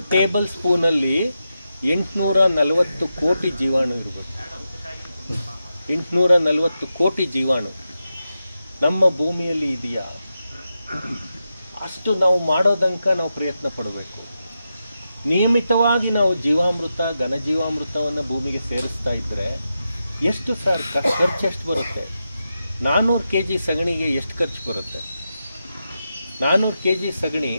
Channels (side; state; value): both; inverted; correlation -0.88